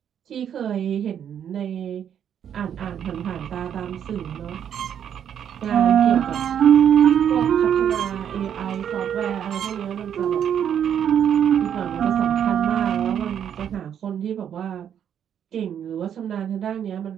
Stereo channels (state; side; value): quieter; left; 9.0 dB